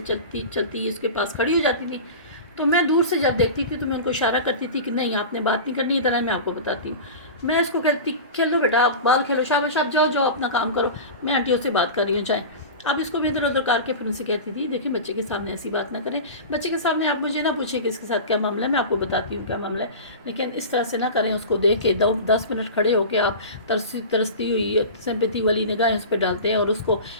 چلتی اس کے پاس کھڑی ہو جاتی تھیں. تو میں دور سے جب دیکھتی تھی تو میں ان کو اشارہ کرتی تھی کہ نہیں آپ نے بات نہیں کرنی, ادھر ہے میں آپ کو بتاتی ہوں. میں اس کو کہتی کھیلو بیٹا, آپ بال کھیلو, شاباش آپ جاؤ اپنا کام کرو, میں آنٹیوں سے بات کر رہی ہوں, جائیں. اب اس کو بھی ادھر ادھر کر کے پھر ان سے کہتی تھی دیکھیں بچے کے سامنے ایسی بات نہ کریں, بچے کے سامنے آپ مجھے نہ پوچھیں کہ اس کے ساتھ کیا معاملہ ہے, میں آپ کو بتاتی ہوں کیا معاملہ ہے, لیکن اس طرح سے نہ کریں. اس کو دیکھ کے 10 منٹ کھڑے ہو کے آپ ترستی ہوئی سمپیتی والی نگاہیں اس پہ ڈالتے ہیں اور اس کو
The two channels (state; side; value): inverted; both; correlation -0.30